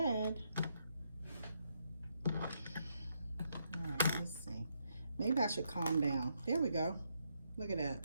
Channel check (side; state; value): both; inverted; correlation -0.78